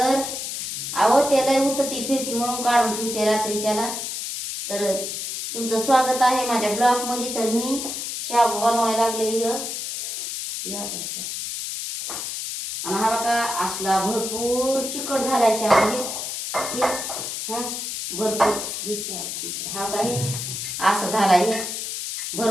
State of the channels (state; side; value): noise; left; hiss, 5 dB below the sound